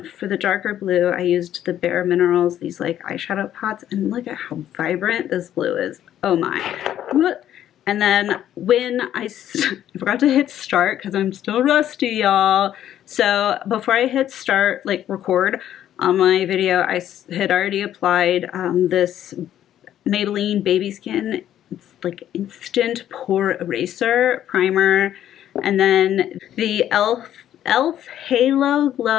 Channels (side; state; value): right; quieter; 11.3 dB